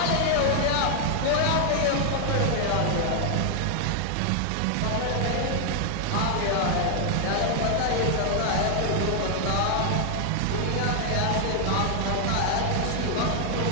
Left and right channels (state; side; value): different; both; correlation 0.00